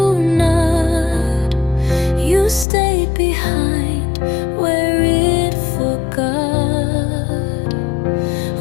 not. You stayed behind where it forgot,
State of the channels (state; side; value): drops out; right; at 2.7 s